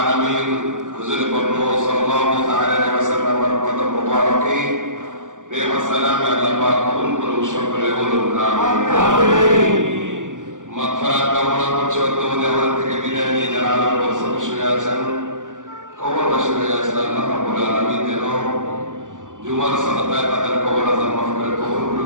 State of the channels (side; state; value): left; late; 0.87 ms